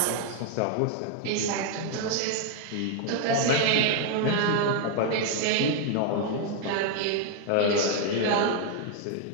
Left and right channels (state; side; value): different; both; correlation 0.00